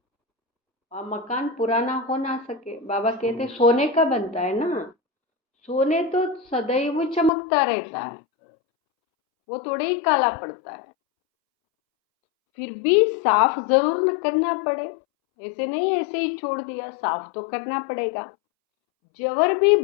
वह मकान पुराना हो ना सके। बाबा कहते सोने का बनता है ना, सोने तो सदैव चमकता रहता है, वो थोड़े ही काला पड़ता है। फिर भी साफ जरूर न करना पड़े, ऐसे नहीं ऐसे ही छोड़ दिया, साफ तो करना पड़ेगा। जवर भी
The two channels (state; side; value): drops out; right; at 7.3 s